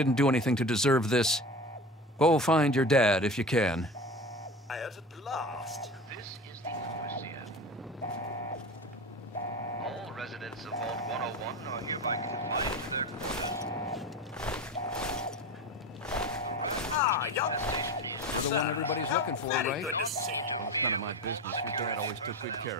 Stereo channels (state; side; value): normal; both; correlation 0.30